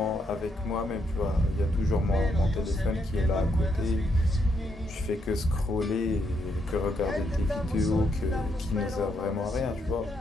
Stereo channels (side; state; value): both; normal; correlation 0.77